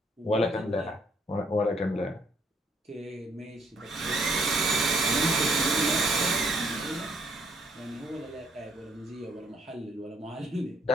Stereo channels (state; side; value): normal; both; correlation 0.67